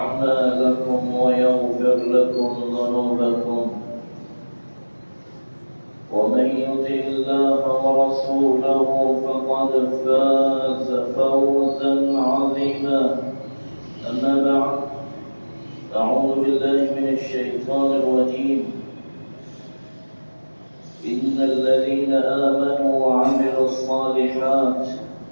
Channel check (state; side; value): inverted; both; correlation -1.00